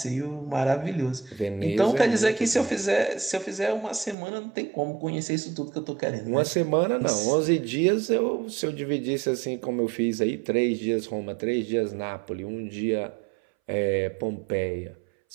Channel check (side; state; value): left; drops out; at 4.2 s